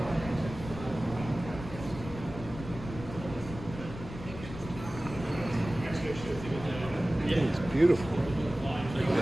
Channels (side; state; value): left; noise; rumble, 11 dB below the sound